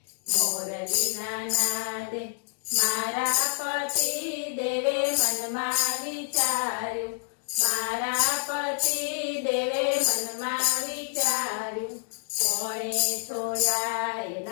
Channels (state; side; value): silent; right; digital silence